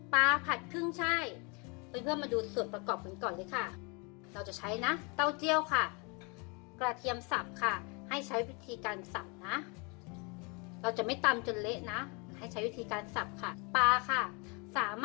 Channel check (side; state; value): right; quieter; 31.3 dB